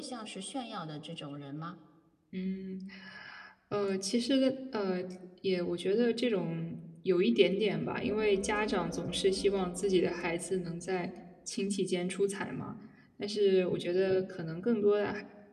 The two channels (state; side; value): identical; both; correlation 1.00